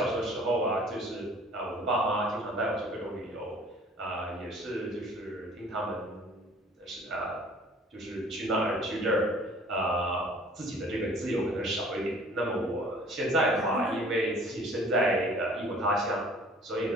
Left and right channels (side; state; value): both; normal; correlation 0.52